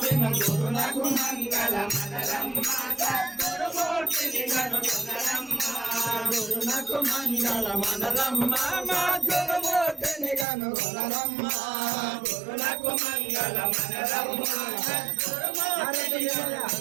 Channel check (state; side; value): drops out; left; at 10.5 s